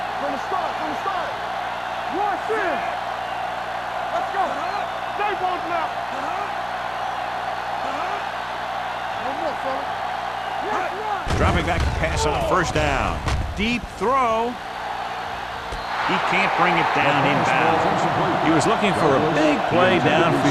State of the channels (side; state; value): both; identical; correlation 1.00